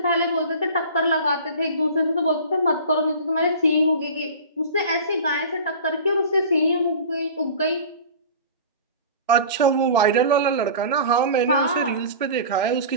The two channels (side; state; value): both; inverted; correlation -0.37